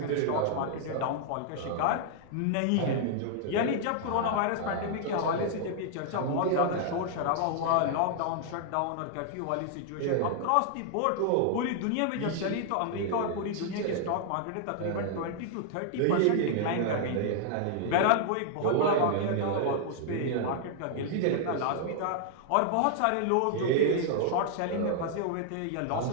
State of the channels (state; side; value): different; both; correlation 0.00